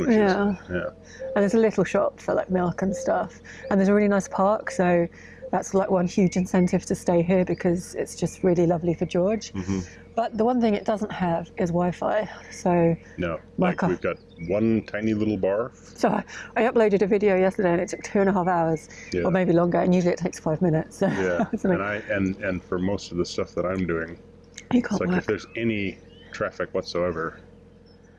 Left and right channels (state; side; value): identical; both; correlation 1.00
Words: Yeah. Yeah. And there's a little shop for like milk and stuff. And there's a really nice park, so that's like one huge incentive to stay here because it's just really lovely for George. Mm-hmm. But the one thing it doesn't have is Wi-Fi. So No, like we've got one tiny little bar. So I uploaded a video yesterday and it took 2.5 hours, Yeah. or maybe longer, and usually it takes 5 minutes. So Yeah, it's like, and for most of the stuff that I'm doing, you it's can't like work. if there's any traffic whatsoever,